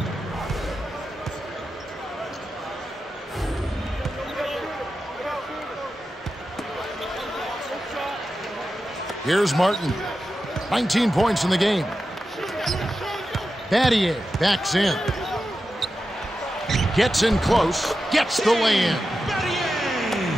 Here's Martin. 19 points in the game. Battier backs in. Gets in close. Gets the lay-in.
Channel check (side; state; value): both; normal; correlation 0.91